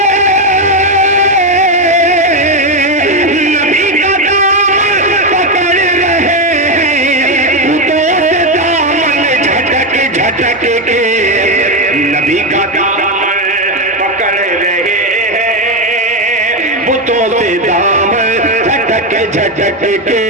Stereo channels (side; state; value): both; normal; correlation 0.09